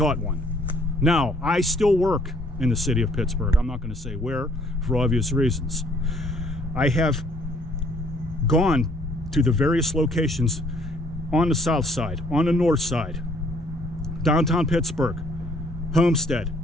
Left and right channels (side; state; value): both; normal; correlation 0.62